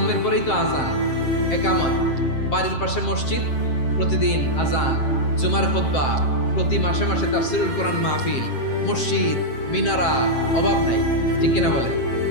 পরেই তো আজান, একামত, বাড়ির পাশে মসজিদ, প্রতিদিন আজান, জুমার খুতবা, প্রতি মাসে মাসে তাফসীরুল কোরআন মাহফিল, মসজিদ, মিনারা, অভাব নাই, ঠিক কিনা বলেন?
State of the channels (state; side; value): late; right; 7.6 ms